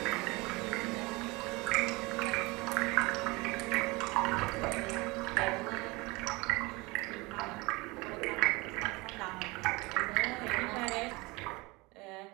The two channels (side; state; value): left; quieter; 24.2 dB